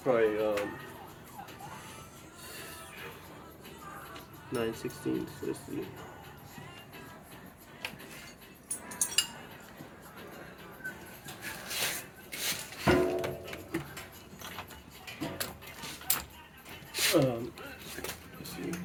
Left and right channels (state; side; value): identical; both; correlation 1.00